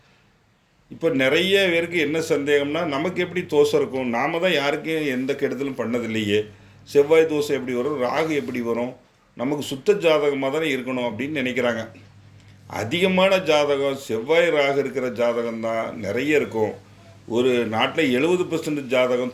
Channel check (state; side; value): identical; both; correlation 1.00